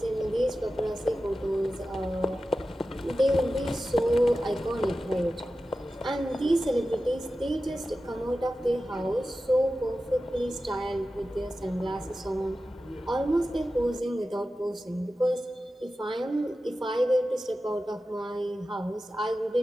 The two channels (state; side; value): normal; both; correlation 0.93